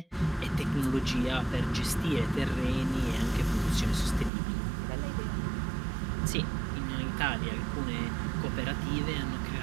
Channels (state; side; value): drops out; left; at 4.3 s